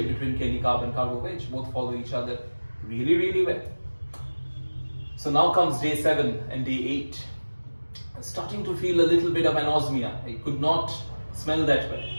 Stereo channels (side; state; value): both; inverted; correlation -1.00